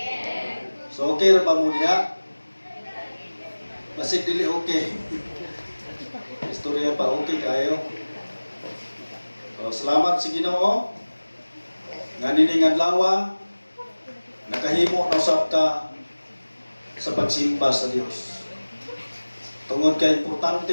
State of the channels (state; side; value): inverted; both; correlation -1.00